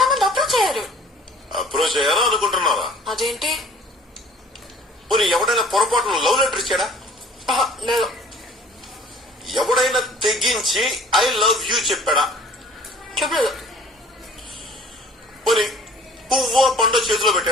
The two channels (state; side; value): normal; both; correlation 0.52